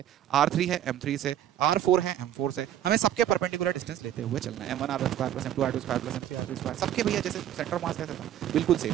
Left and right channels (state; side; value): quieter; left; 11.2 dB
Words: r3 है m3 से, r4 है m4 से, हमें सबके परपेंडिकुलर डिस्टेंस लेते हुए चलना है। m1 r1² + m2 r2² + m3 r3², सबके भैया जैसे सेंटर मास कैसे था, बिल्कुल